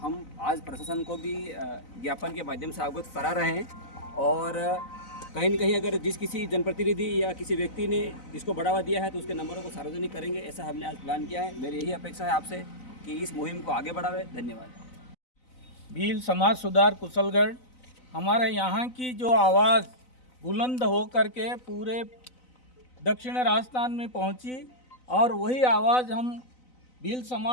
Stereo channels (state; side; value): late; right; 4.0 ms